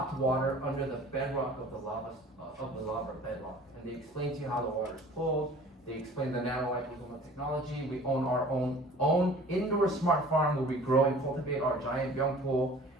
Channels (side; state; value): both; normal; correlation 0.47